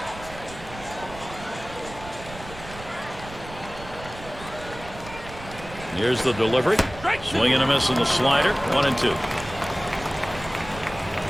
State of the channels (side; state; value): right; noise; rumble, 15 dB below the sound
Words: Here's the delivery. Swing and a miss in the slider. 1-2.